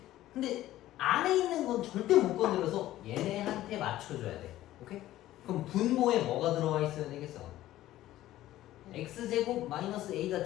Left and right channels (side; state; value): right; quieter; 14.6 dB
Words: 근데 안에 있는 건 절대 못 건드려서 얘네한테 맞춰줘야 돼. 오케이? 그럼 분모에 뭐가 들어와 있어야 되겠어? x제곱 마이너스 a가